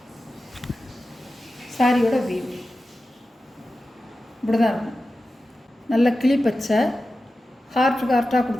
சாரியோட வீவ் இப்படி தான் இருக்கும். நல்ல கிளி பச்சை ஹார்ட்டாக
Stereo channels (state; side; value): normal; both; correlation 0.93